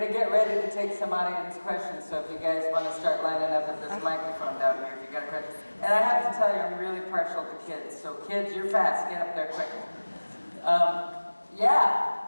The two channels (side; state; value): both; inverted; correlation -1.00